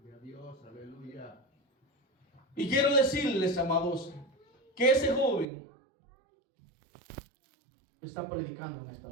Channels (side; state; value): left; drops out; at 5.5 s